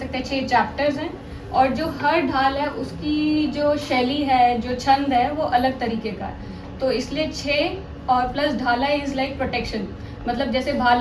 हैं 6 चैप्टर्स हैं। और जो हर ढाल है उसकी जो शैली है, जो छंद है, वो अलग तरीके का है। तो इसलिए 6 और प्लस ढाला इज लाइक प्रोटेक्शन। मतलब जैसे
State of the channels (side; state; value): both; identical; correlation 1.00